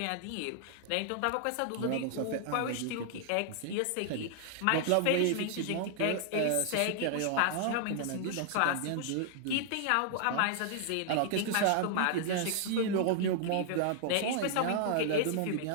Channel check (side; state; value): both; different; correlation 0.00